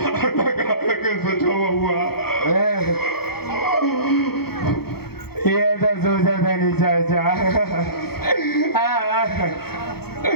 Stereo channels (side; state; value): right; late; 0.96 ms